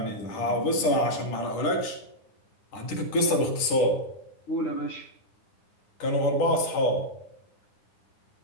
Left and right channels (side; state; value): right; late; 10 ms